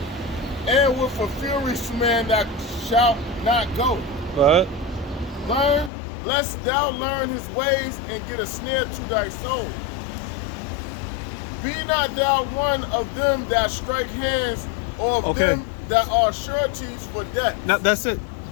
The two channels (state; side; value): drops out; right; at 5.9 s